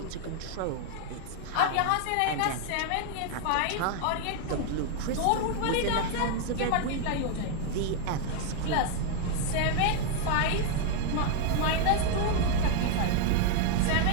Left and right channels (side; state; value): both; different; correlation 0.00